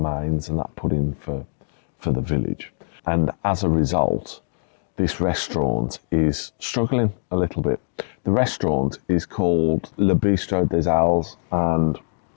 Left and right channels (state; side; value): silent; right; digital silence